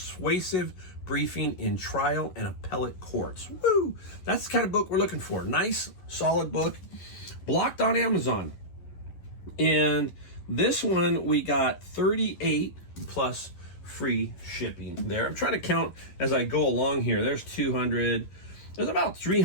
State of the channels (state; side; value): late; right; 11 ms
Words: briefing in trial and appellate courts. Woo! That's the kind of book we're looking for. Nice, solid book. Blocked on Amazon. And this one we got 38 plus free shipping there. I'm trying to count as I go along here. There's 200. There's about